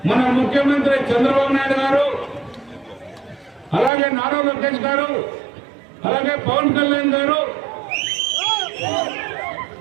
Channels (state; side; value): drops out; left; at 3.9 s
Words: మన ముఖ్యమంత్రి చంద్రబాబు నాయుడు గారు, అలాగే నారా లోకేష్ గారు, అలాగే పవన్ కళ్యాణ్ గారు